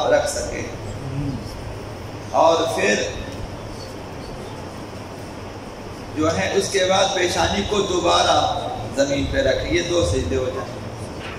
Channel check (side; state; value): both; identical; correlation 1.00